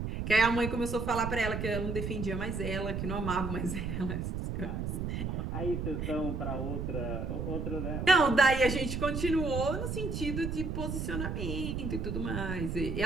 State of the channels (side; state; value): right; noise; rumble, 3 dB below the sound